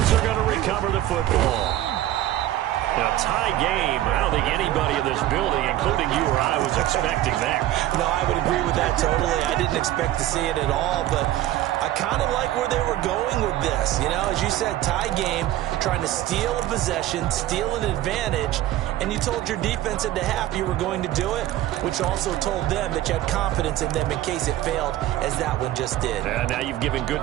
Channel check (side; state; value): left; quieter; 14.0 dB